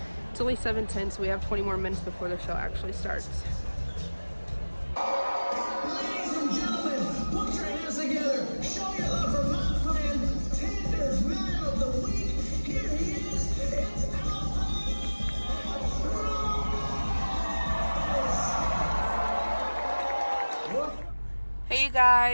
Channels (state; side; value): inverted; both; correlation -1.00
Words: It's only 7:10, so we have 20 more minutes before the show actually starts. Ladies and gentlemen, put your hands together. Show your love for my friend, Tinder's Man of the Week. Here he is. It's Hey you